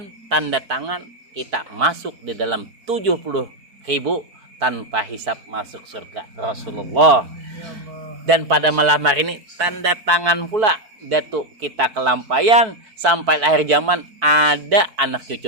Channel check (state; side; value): late; left; 4.6 ms